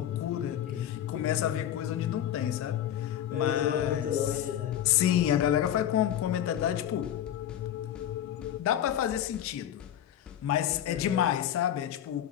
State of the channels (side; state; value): right; quieter; 10.8 dB